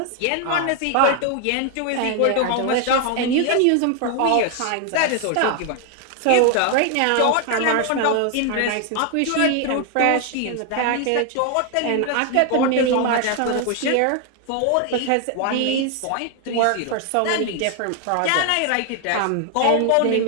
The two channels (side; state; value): both; different; correlation 0.00